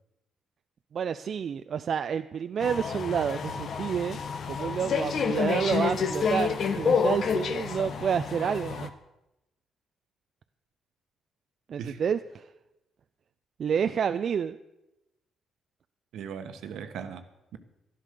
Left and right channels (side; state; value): both; normal; correlation 0.72